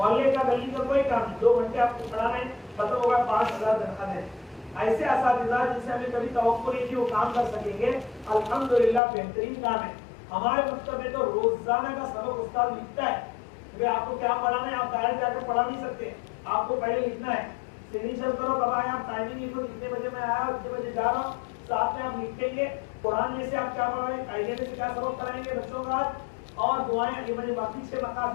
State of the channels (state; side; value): drops out; right; at 9.0 s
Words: کا گلی کا کوئی کام نہیں، 2 گھنٹے آپ کو پڑھا رہے ہیں، ختم ہوگا 5,000 تنخواہ دے رہے ہیں۔ ایسے اساتذہ جن سے ہمیں کبھی توقع نہیں تھی وہ کام کر سکیں گے، الحمدللہ بہترین کام ہے۔ ہمارے مکتب میں تو روزانہ کا سبق استاد لکھتا ہے کہ آپ کو کیا پڑھانا ہے، آپ ڈائریکٹ جا کر پڑھا نہیں سکتے، آپ کو پہلے لکھنا ہے، سگنیچر کرو کب آئے، آپ ٹائمنگ لکھو کتنے بجے میں آیا کتنے بجے جا رہا ہوں، ساتھ میں آپ لکھیں گے قرآن میں سے آپ کیا پڑھ رہے ہیں، قاعدے میں سے کیا سبق کرائیں گے بچوں کا، اور دعائیں یہ مجھے باقی 6